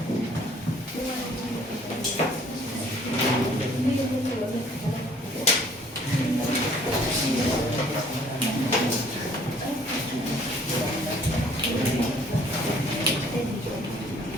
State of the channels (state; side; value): normal; both; correlation 0.58